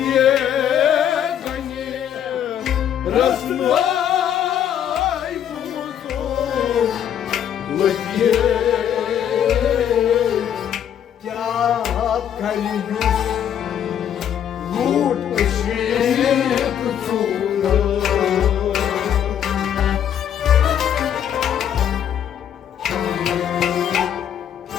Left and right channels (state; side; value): quieter; right; 9.5 dB